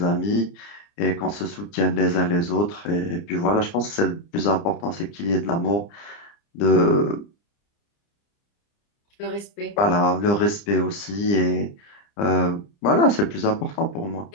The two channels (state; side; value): late; right; 30 ms